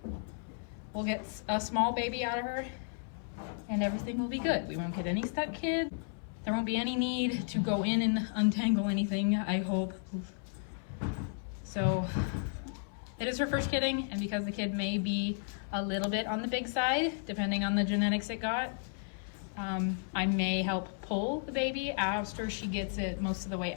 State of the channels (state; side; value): silent; right; 55 dB below the other